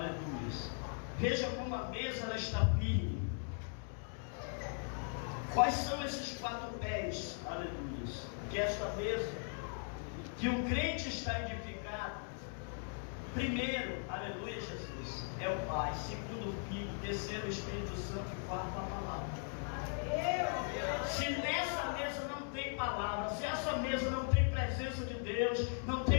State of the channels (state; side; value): silent; right; 52 dB below the other